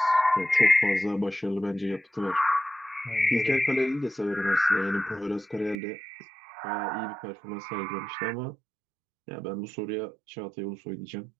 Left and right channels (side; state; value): left; drops out; at 5.8 s